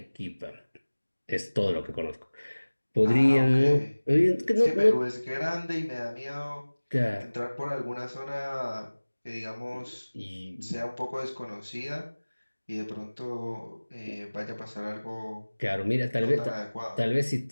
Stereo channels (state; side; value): inverted; both; correlation -1.00